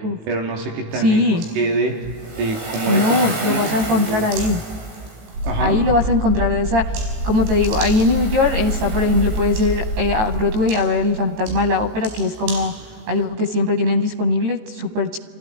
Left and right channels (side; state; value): left; late; 19 ms